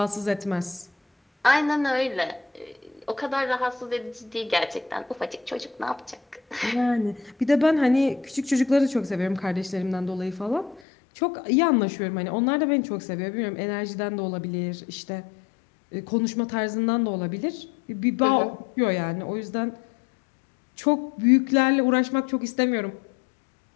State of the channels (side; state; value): right; drops out; at 10.8 s